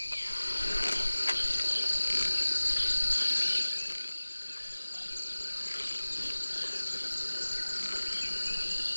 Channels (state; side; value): inverted; both; correlation -1.00